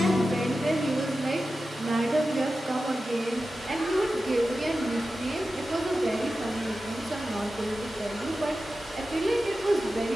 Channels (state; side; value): normal; both; correlation 0.93